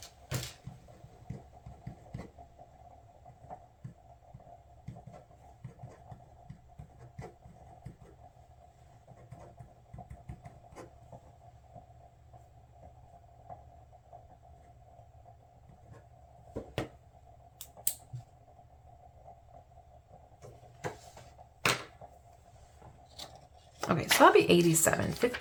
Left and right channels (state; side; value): identical; both; correlation 1.00